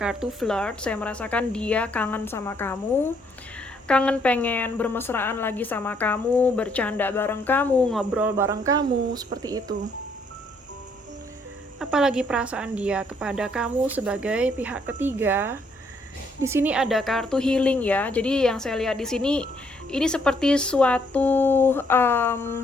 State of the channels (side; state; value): both; normal; correlation 0.69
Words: flirt. Saya merasakan dia kangen sama kamu, kangen pengen bermesraan lagi sama kamu, bercanda bareng kamu, ngobrol bareng kamu, seperti itu. Apalagi perasaan dia kepada kamu sebagai pihak ketiga. Di sini ada kartu healing, ya. Jadi yang saya lihat di sini ini seperti suatu